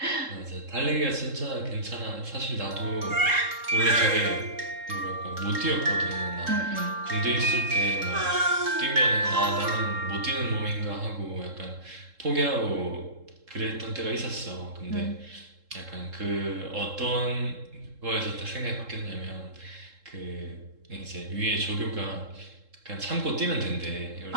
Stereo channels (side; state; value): left; late; 3.7 ms